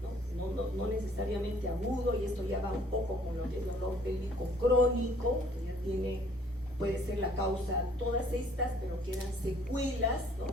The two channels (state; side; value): normal; both; correlation 0.58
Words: no necesariamente agudo, y esto ya va un poco con lo que es dolor pélvico crónico, que ya puede ser la causa todas estas, pero quedan secuelas, ¿no?